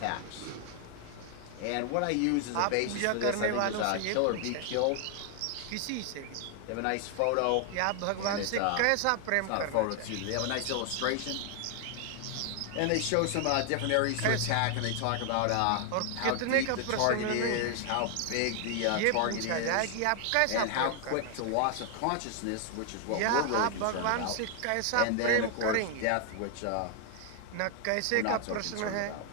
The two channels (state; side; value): different; both; correlation 0.00